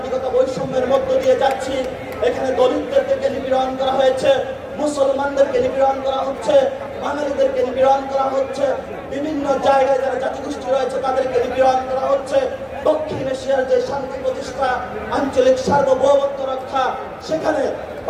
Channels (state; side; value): identical; both; correlation 1.00